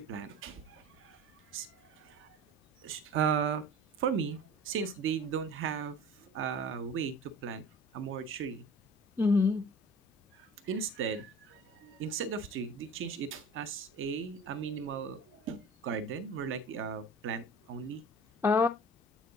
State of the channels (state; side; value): normal; both; correlation 0.41